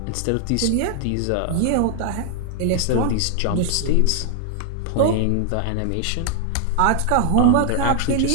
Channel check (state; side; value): different; both; correlation 0.00